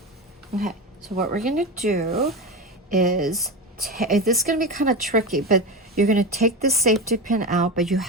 Okay, so what we're gonna do is, this is gonna be kind of tricky, but you're gonna take the safety pin out, but you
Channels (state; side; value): normal; both; correlation 0.21